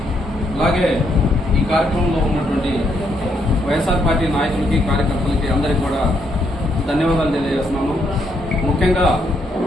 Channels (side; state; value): both; normal; correlation 0.75